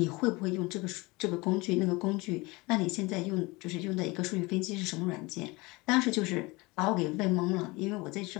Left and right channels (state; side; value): quieter; right; 23.8 dB